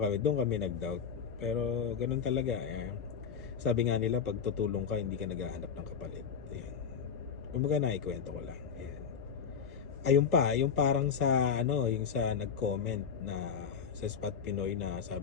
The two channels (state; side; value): quieter; right; 6.9 dB